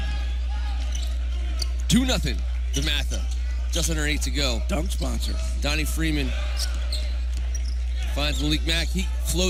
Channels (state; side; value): identical; both; correlation 1.00